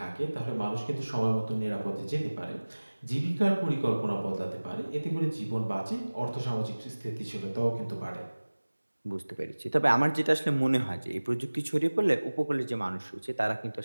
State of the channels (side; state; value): both; inverted; correlation -1.00